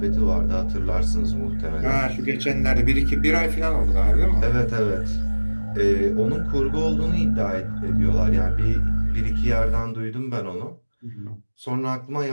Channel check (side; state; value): both; inverted; correlation -1.00